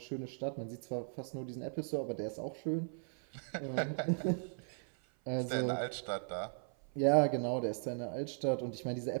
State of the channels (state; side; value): silent; left; 53 dB below the other